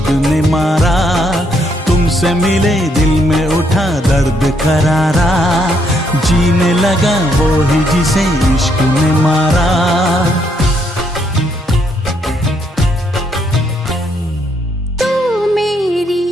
ने मारा, तुमसे मिले दिल में उठा दर्द करारा, जीने लगा वो ही जिसे इश्क ने मारा। तू मेरी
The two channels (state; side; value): normal; both; correlation 0.73